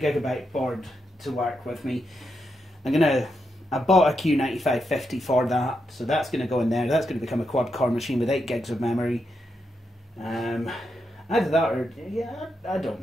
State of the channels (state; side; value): normal; both; correlation 0.84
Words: Gigabyte board to work with me. I bought a Q9550 for that, so that's going to go in there. That's going to become a quad-core machine with 8 gigs of memory. Either that or, yeah, I don't